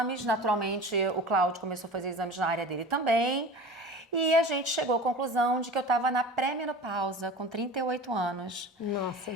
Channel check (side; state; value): both; normal; correlation 0.36